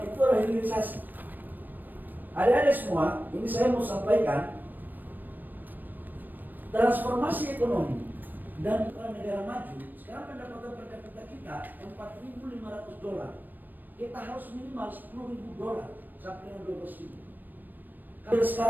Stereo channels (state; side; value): late; left; 0.090 ms